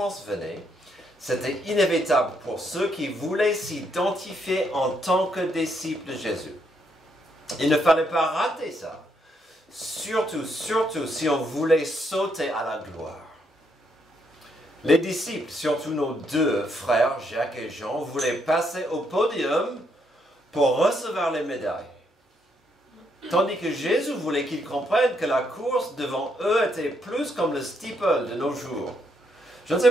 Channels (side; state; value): both; normal; correlation 0.75